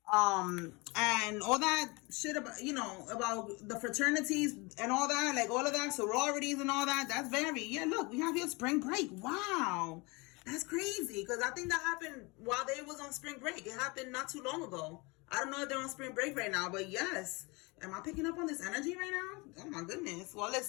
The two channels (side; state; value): right; quieter; 26.8 dB